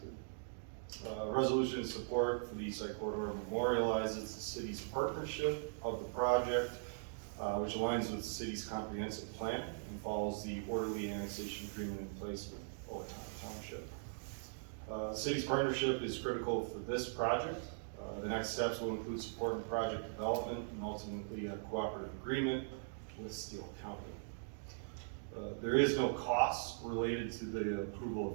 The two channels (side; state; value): left; silent; digital silence